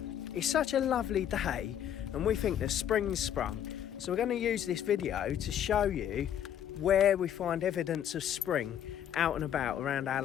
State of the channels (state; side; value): quieter; right; 9.9 dB